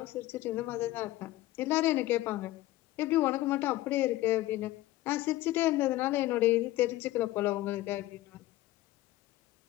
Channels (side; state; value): right; quieter; 16.4 dB